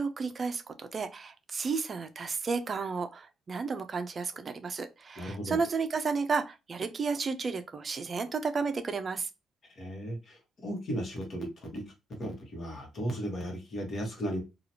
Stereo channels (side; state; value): left; quieter; 3.5 dB